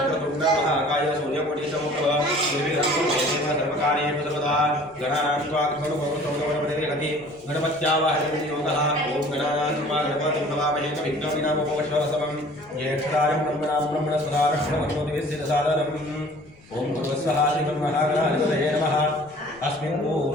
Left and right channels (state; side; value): noise; left; rumble, 27 dB below the sound